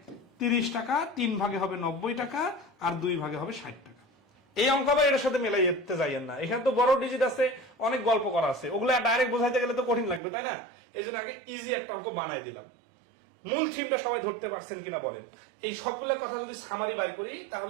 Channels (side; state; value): left; drops out; at 10.2 s